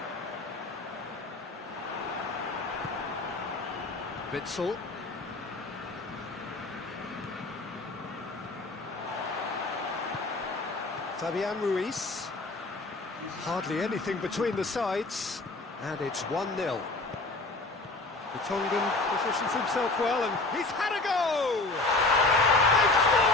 Witsel. Fabian Ruiz. Hardly anything between the sides, and it's 1-0. The Tongan positions himself well, and he's had a go! They've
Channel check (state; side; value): quieter; right; 3.2 dB